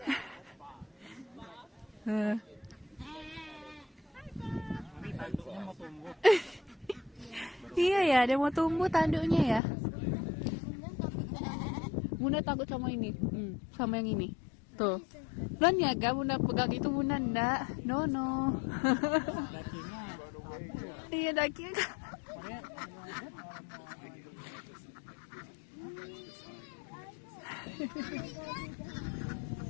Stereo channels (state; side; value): drops out; right; at 9.6 s